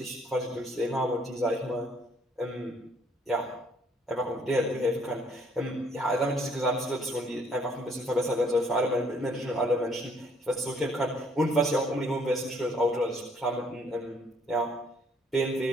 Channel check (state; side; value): normal; both; correlation 0.63